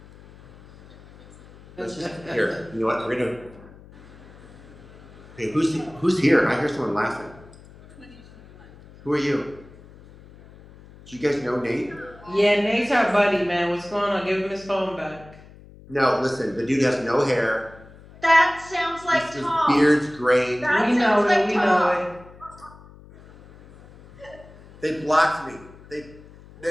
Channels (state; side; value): noise; left; hum, 22 dB below the sound